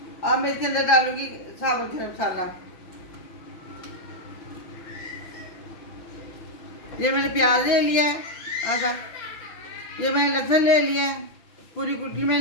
अब मैं इसके अंदर डालूंगी साबुत गरम मसाला। ये मैंने प्याज ले लिया है आधा, ये मैंने लहसुन ले लिया है पूरी कुटी में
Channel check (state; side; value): late; right; 5.8 ms